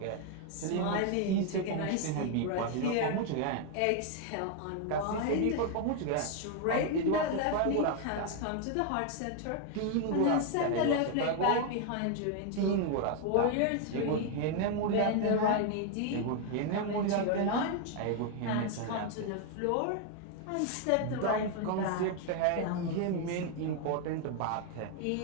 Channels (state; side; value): different; both; correlation 0.01